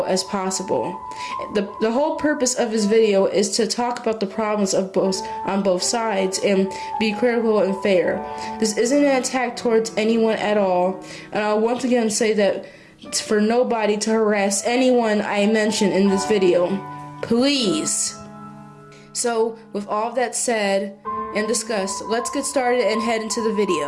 as possible. The whole purpose of this video is to talk about the problems on both sides and be critical and fair. This isn't an attack towards anyone at all, and I'll once again say that for nobody to harass anyone I mention in this video. Please. So, with all of that said and discussed, let's get started and head into the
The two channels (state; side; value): identical; both; correlation 1.00